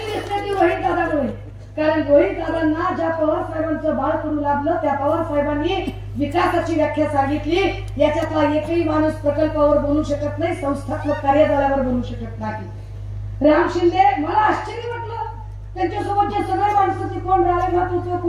दिसते ती रोहित दादामुळे. कारण रोहित दादांना ज्या पवार साहेबांचं बाळ करू लागलं त्या पवार साहेबांनी विकासाची व्याख्या सांगितली. याच्यातला एकही माणूस प्रकल्पावर बोलू शकत नाही, संस्थात्मक कार्यजाल्यावर बोलू शकत नाही. राम शिंदे, मला आश्चर्य वाटलं त्यांच्यासोबतचे सगळे माणसं ते कोण रालेभात होते,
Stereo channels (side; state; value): both; identical; correlation 1.00